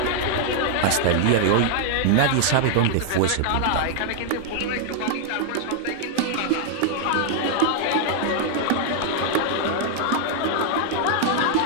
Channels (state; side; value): different; both; correlation -0.01